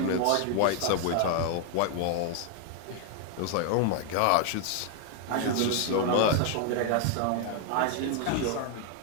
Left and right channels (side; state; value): both; different; correlation 0.00